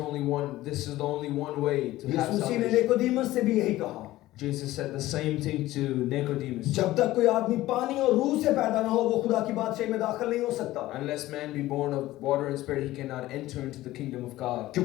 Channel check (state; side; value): quieter; right; 16.3 dB